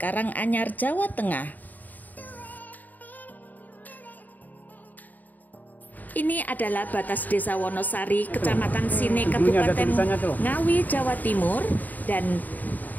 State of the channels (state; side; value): late; right; 0.083 ms